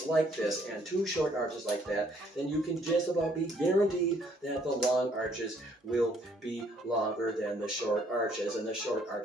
like this and 2 short arches like that, then you can just about be guaranteed that the long arches will be longer than the short arches, and the short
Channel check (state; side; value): normal; both; correlation 0.65